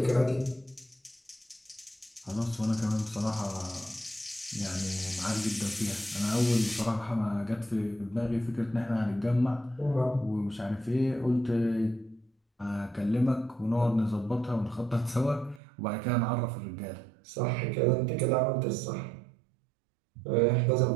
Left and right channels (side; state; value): left; drops out; at 15.6 s